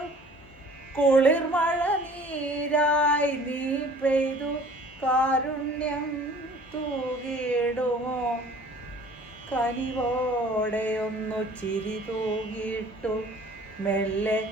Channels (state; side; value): normal; both; correlation 0.50